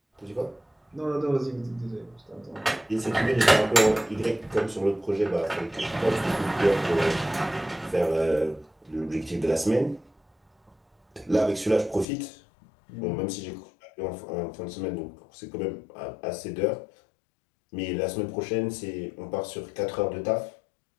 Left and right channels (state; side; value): drops out; right; at 12.1 s